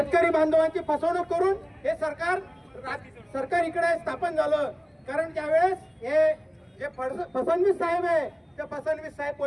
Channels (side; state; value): both; identical; correlation 1.00